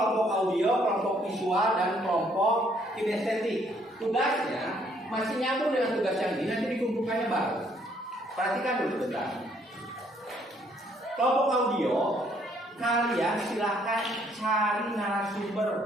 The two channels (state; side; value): normal; both; correlation 0.66